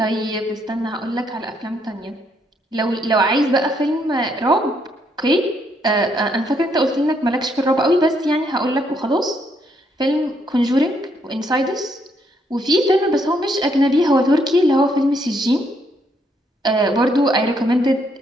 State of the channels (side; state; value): both; normal; correlation 0.73